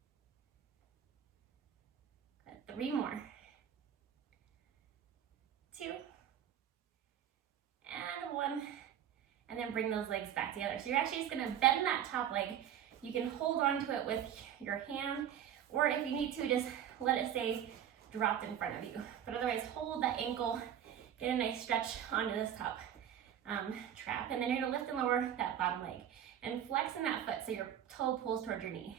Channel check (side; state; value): left; quieter; 9.8 dB